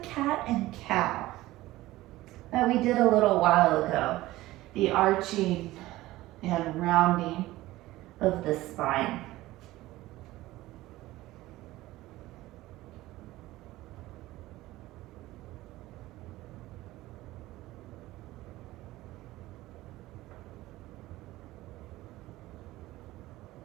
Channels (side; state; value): left; quieter; 17.3 dB